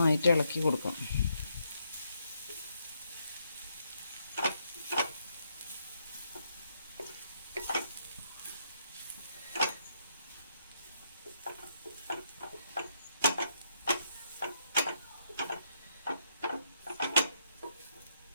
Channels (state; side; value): inverted; both; correlation -0.76